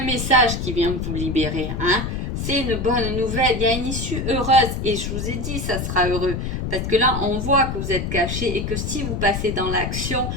message qui vient vous libérer. C'est une bonne nouvelle, il y a une issue heureuse et je vous ai dit ça sera heureux parce que là on voit que vous êtes caché et que si vous passez dans l'action,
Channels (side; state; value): left; noise; rumble, 3 dB below the sound